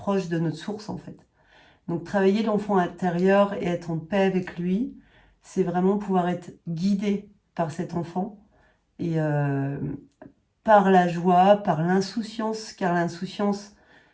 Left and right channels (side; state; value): both; identical; correlation 1.00